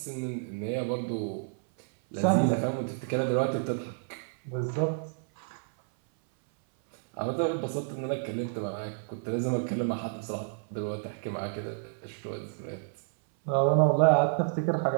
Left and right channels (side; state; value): left; silent; 57 dB below the other